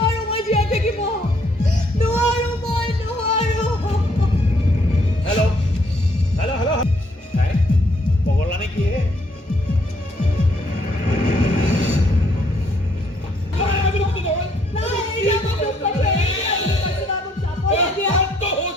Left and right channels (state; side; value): normal; both; correlation 0.68